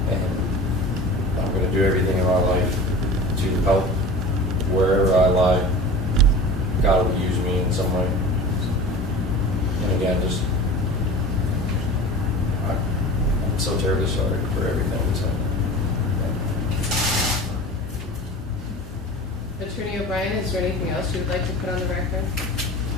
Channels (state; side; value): normal; both; correlation 0.36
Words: and I'm going to do everything in my life to help wherever I lie. God will use me in some way. And again, just I'm so terribly sorry for everything that's happened. Attorney O'Brien, is there anything else you would like to put on the record?